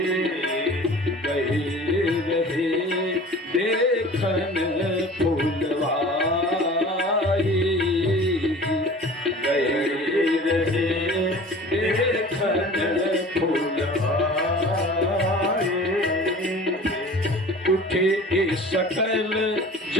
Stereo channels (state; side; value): normal; both; correlation 0.42